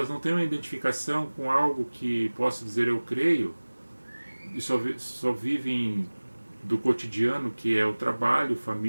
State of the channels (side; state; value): both; inverted; correlation -1.00